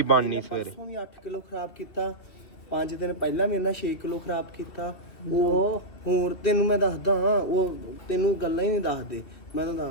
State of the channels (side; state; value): right; late; 2.9 ms